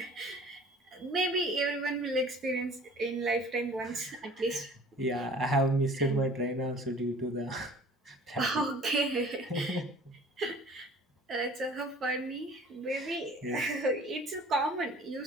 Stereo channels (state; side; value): normal; both; correlation 0.48